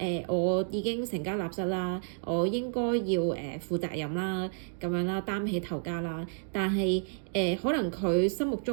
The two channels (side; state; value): left; silent; digital silence